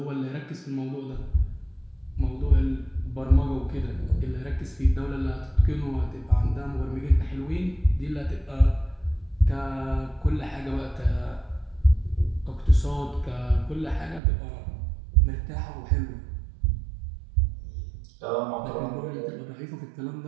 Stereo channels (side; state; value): left; drops out; at 14.2 s